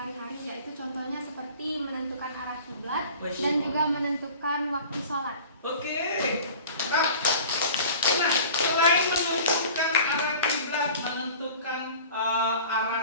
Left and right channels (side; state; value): both; inverted; correlation -0.42